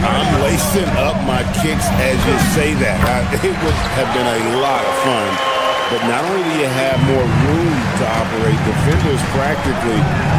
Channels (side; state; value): both; identical; correlation 1.00